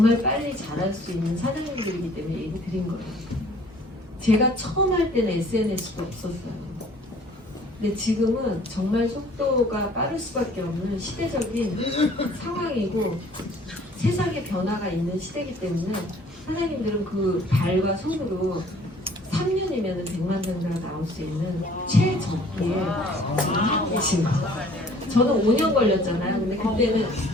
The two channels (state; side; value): normal; both; correlation 0.54